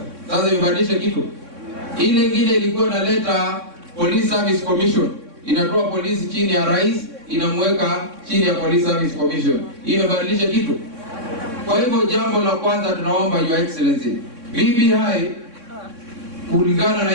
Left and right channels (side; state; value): left; late; 3.6 ms